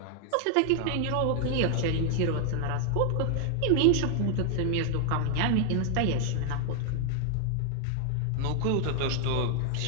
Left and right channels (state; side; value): different; both; correlation 0.00